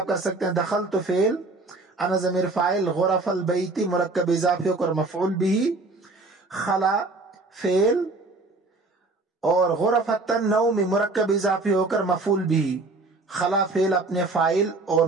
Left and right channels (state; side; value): quieter; left; 3.3 dB